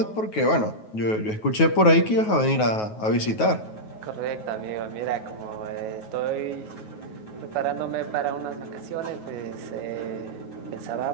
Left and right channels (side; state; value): right; late; 9.4 ms